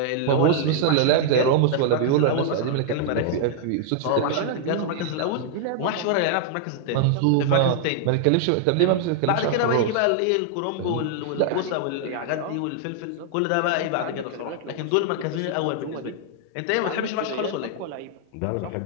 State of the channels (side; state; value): both; different; correlation 0.00